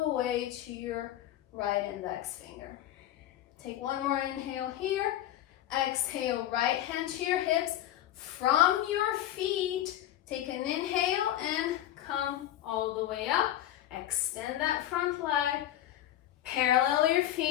the way to your right index finger. Take one more inhale here. Exhale, right hand to your hips. From your feet, take an inhale and come all the way up. Extend that front leg. Parallel your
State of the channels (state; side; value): quieter; right; 12.9 dB